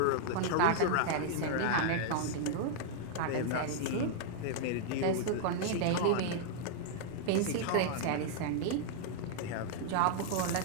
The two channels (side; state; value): both; different; correlation -0.01